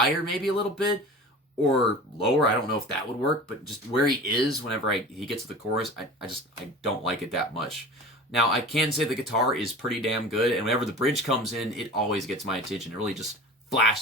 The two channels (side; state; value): both; normal; correlation 0.38